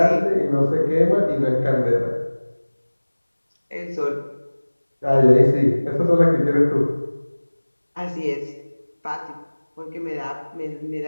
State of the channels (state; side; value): inverted; both; correlation -1.00